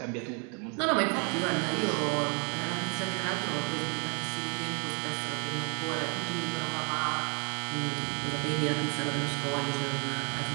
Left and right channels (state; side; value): quieter; left; 36.1 dB